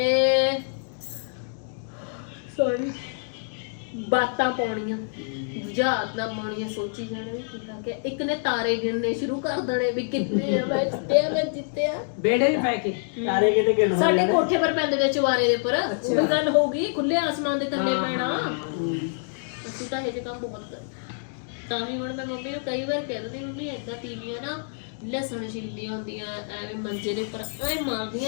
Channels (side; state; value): right; silent; digital silence